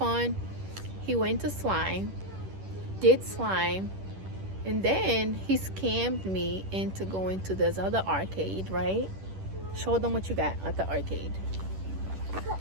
He went to slime, did slime, and then he scammed me into going to this other arcade, right? Show them what you got at the arcade.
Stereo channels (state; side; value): late; left; 10 ms